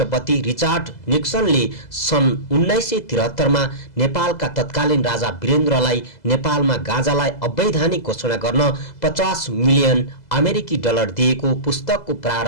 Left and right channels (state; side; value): late; right; 2.0 ms